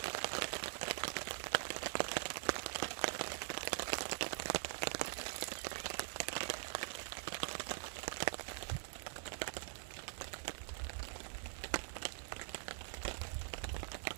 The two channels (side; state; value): left; silent; digital silence